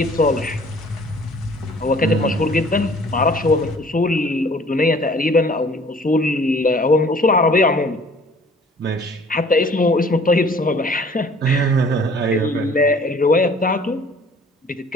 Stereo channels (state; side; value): normal; both; correlation 0.53